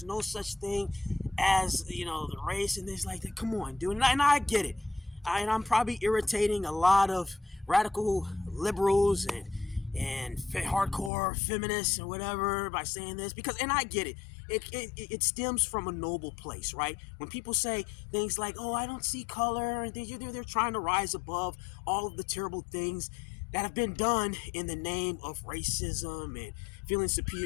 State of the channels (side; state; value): right; drops out; at 11.1 s